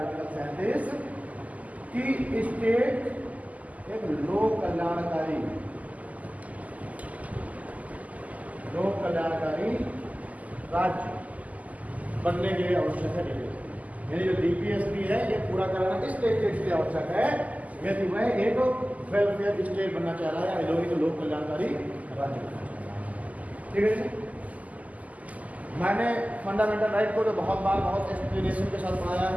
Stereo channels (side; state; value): left; late; 0.074 ms